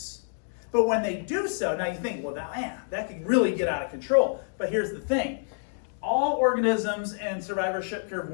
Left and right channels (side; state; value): right; silent; digital silence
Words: But when they do so, now you think, well, that could really get out of control. But here's the thing. All organisms in survivorship curve